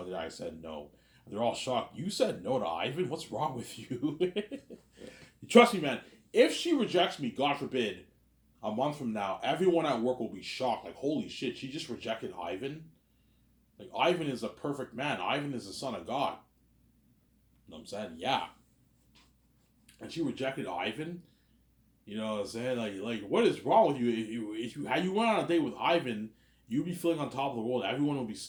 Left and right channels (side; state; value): both; identical; correlation 1.00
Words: the day I said no. And they're all shocked. You said no to Ivan? What's wrong with you? Trust me, man. If she rejects me, God forbid, a month from now, everyone at work will be shocked. Like, holy shit, she just rejected Ivan? Like, Ivan is a perfect man. Ivan is the son of God. You know what I'm saying? Yeah. And she rejected Ivan? You know what I'm saying? Like what is wrong with you? If you had you went on a date with Ivan, you'd be feeling on top of the world. Everyone would be